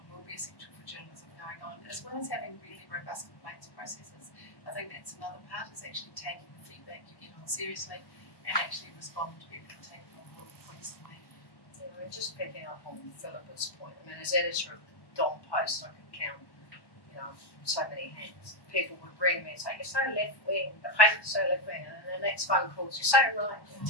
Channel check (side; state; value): right; late; 1.1 ms